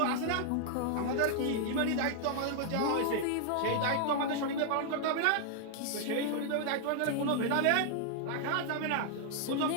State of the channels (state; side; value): different; both; correlation -0.01